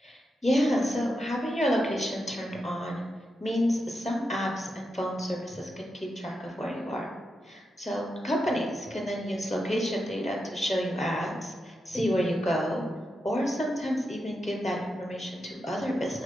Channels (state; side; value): normal; both; correlation 0.87